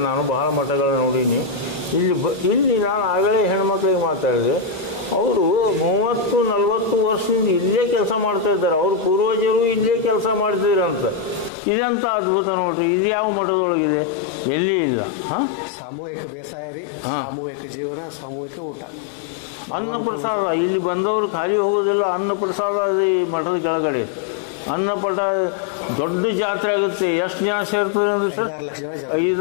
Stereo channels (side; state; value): right; drops out; at 11.5 s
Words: ನಾನು ಬಹಳ ಮಠಗಳನ್ನ ನೋಡೀನಿ. ಇಲ್ಲಿ ನಾನು ಆಗಲೇ ಹೆಣ್ಮಕ್ಳಿಗೆ ಮಾತಾಡಿದೆ, ಅವರು 30-40 ವರ್ಷದಿಂದ ಇಲ್ಲೇ ಕೆಲಸ ಮಾಡ್ತಾ ಇದ್ದಾರೆ. ಅವ್ರ ಪೂರ್ವಜರು ಇಲ್ಲೇ ಕೆಲಸ ಮಾಡ್ತಿದ್ರಂತ. ಇದಂತ ಅದ್ಭುತ ನೋಡ್ರಿ. ಇದು ಯಾವ ಮಠದೊಳಗಿದೆ? ಎಲ್ಲಿ ಇಲ್ಲ. ಸಾಮೂಹಿಕ ಬೇಸಾಯ ರೀ, ಸಾಮೂಹಿಕ ಜೀವನ, ಸಾಮೂಹಿಕ ಊಟ, ಅನ್ನ ಪ್ರಸಾದ. ಇಲ್ಲಿ ಬಂದವರು ಖಾಲಿ ಹೋಗೋದಿಲ್ಲ. ಅನ್ನ ಪ್ರಸಾದ ಈ ಮಠದ ಕೆಳಗಡೆ ಅನ್ನಪಟ ದೊಡ್ಡ ಜಾತ್ರೆ ಆಗುತ್ತೆ. ಎಷ್ಟು ಜನ ಸೇರ್ತದೆ ಅಂದ್ರೆ 5-6 ಲಕ್ಷ ಜನ.